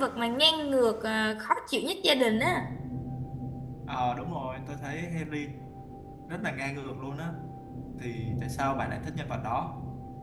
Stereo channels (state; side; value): identical; both; correlation 1.00